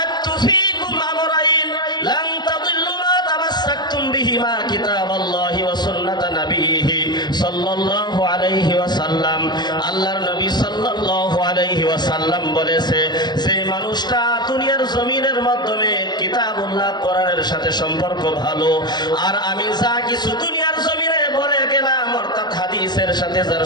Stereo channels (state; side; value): late; right; 0.21 ms